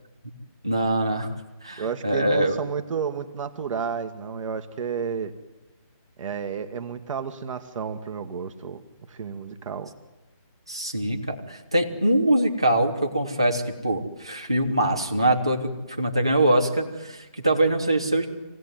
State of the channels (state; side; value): inverted; both; correlation -0.72